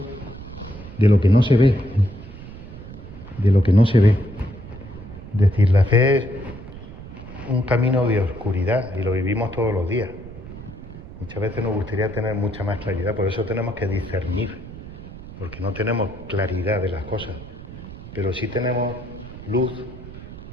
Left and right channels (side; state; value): right; noise; rumble, 14 dB below the sound